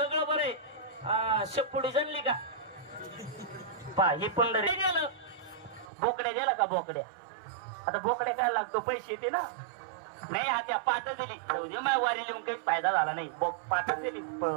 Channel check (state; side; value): drops out; left; at 5.9 s